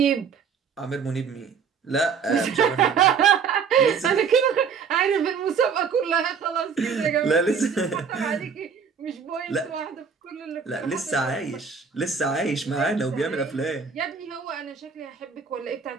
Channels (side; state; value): left; quieter; 6.2 dB